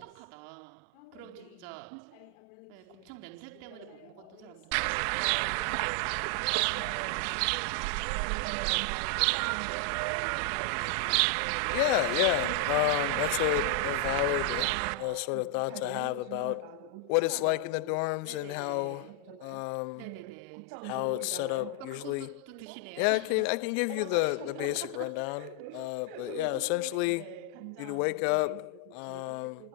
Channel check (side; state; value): both; different; correlation 0.00